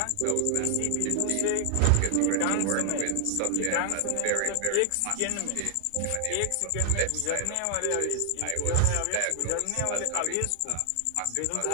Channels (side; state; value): both; different; correlation 0.00